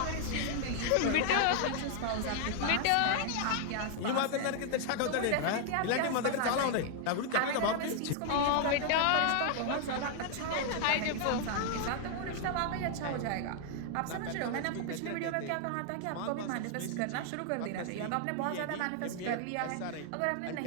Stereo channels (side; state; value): both; different; correlation 0.00